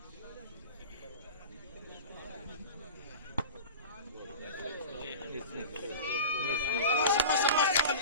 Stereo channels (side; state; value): both; inverted; correlation -0.32